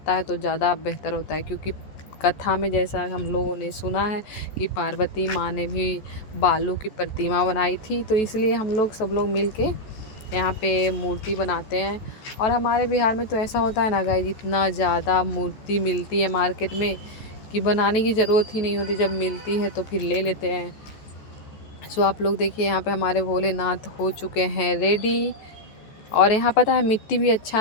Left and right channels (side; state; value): right; late; 14 ms